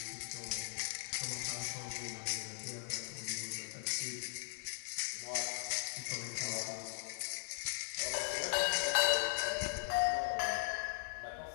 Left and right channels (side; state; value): right; silent; digital silence